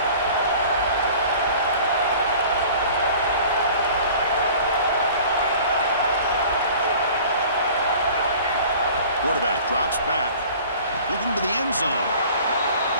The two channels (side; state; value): both; inverted; correlation -0.46